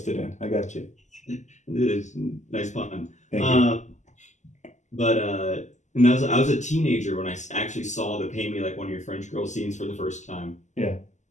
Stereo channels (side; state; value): right; late; 0.34 ms